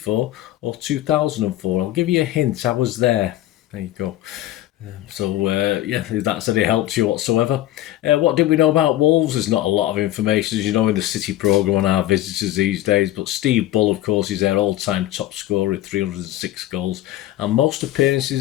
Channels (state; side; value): quieter; right; 14.2 dB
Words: or 2004? I'll give you a hint. I was there. There you go. If that's any help to you whatsoever. What did we know about Wolves? There's not a lot of information, as you know, in the City programme on our visitors these days, but Steve Bull, of course, is their all-time top scorer with 306 goals, and most